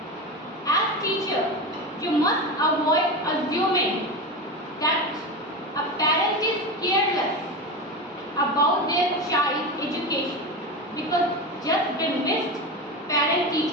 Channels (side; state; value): both; normal; correlation 0.22